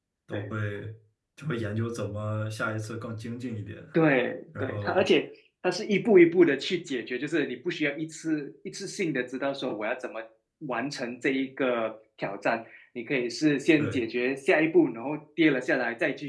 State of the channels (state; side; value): identical; both; correlation 1.00